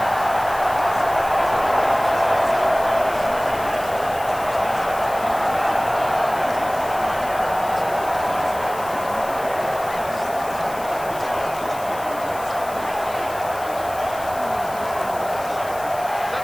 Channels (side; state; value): left; noise; hiss, 16 dB below the sound